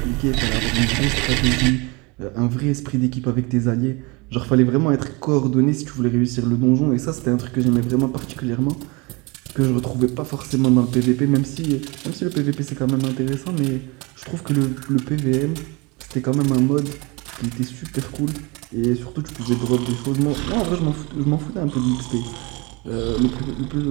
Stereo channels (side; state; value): left; quieter; 26.5 dB